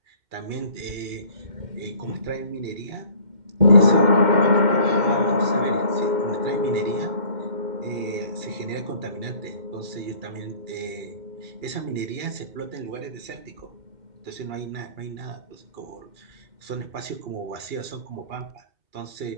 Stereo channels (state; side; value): late; left; 2.8 ms